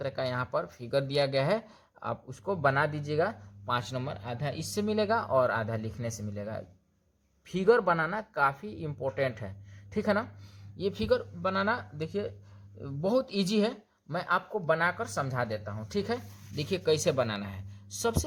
का यहाँ पर फिगर दिया गया है, आप उसको बना दीजिएगा। 5 नंबर आधा इससे मिलेगा और आधा लिखने से मिलेगा। फिगर बनाना काफ़ी इम्पोर्टेंट है, ठीक है ना। ये फिगर बनाना देखिए बहुत इजी है, मैं आपको बनाकर समझा देता हूँ। ठीक है, देखिए कैसे बनाना है।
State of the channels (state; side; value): identical; both; correlation 1.00